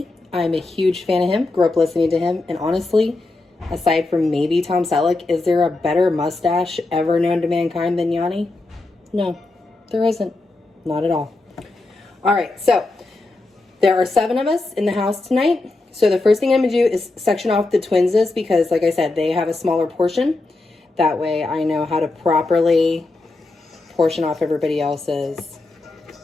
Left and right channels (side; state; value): right; quieter; 3.2 dB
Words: I'm a huge fan of him, grew up listening to him, and honestly, aside from maybe Tom Selleck, is there a better mustache ever known to mankind than Yanni? No, there isn't. Not at all. All right, so there are 7 of us in the house tonight. So the first thing I'm going to do is section off the twins' because, like I said, they have a smaller portion. That way I know how to properly portion off everybody else's